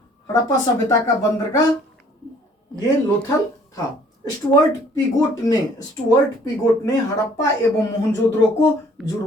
सभ्यता का बंदरगाह ये लोथल था। स्टुअर्ट पीगोट ने हड़प्पा एवं मोहनजोदड़ो को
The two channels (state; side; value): normal; both; correlation 0.58